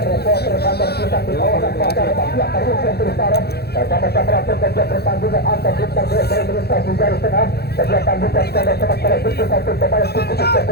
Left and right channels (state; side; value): late; right; 0.47 ms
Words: kantor pusat di kawasan pasar Bapak Karusian Utara bersama-sama pekerja pertandingan antar bintang desa Indonesia di garis tengah kegiatan bukan pada sementara itu satu pemain cukup